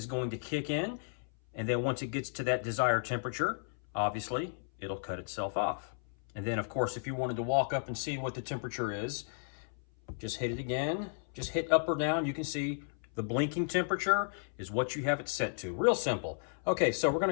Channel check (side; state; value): right; silent; 55 dB below the other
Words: going to kick in, and then once it gets to that desired temperature, obviously, it'll cut itself off. And then, of course, if you wanted to walk up and see what the temperature is, just hit it again. Just hit up or down. You can see the blinking temperature is what you have it set to. Real simple. Okay, so we're going